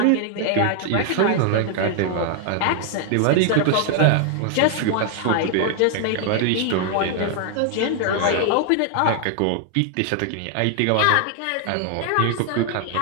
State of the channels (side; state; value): both; different; correlation 0.00